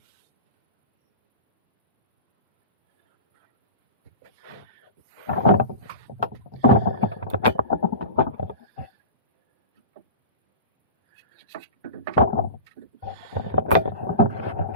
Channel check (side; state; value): both; inverted; correlation -0.32